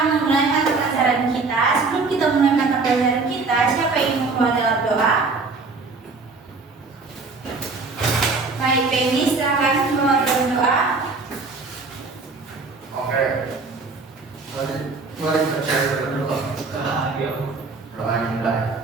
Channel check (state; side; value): quieter; left; 4.1 dB